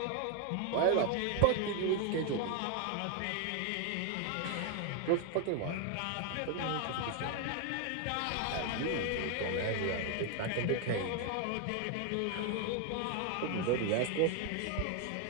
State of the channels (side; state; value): both; different; correlation 0.01